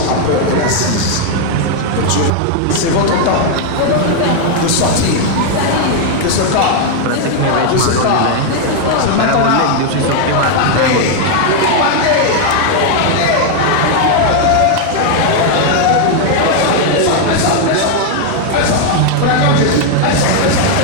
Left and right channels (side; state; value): both; different; correlation 0.00